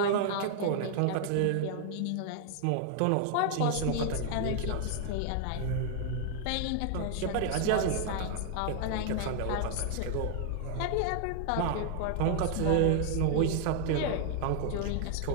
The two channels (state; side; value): different; both; correlation 0.00